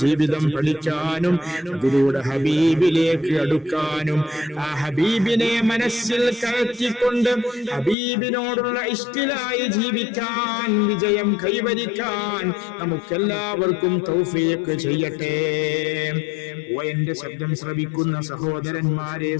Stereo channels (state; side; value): drops out; right; at 8.0 s